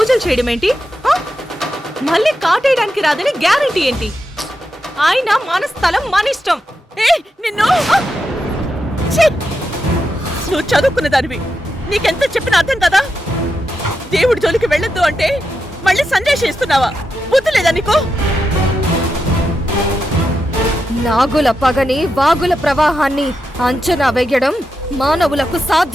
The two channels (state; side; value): normal; both; correlation 0.87